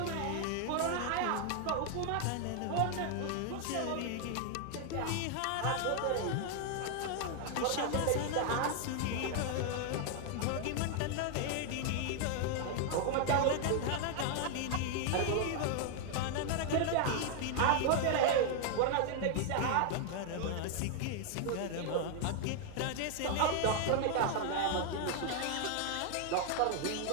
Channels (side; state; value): both; different; correlation 0.00